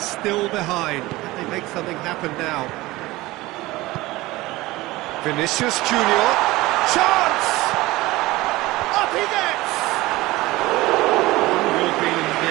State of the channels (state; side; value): quieter; left; 19.3 dB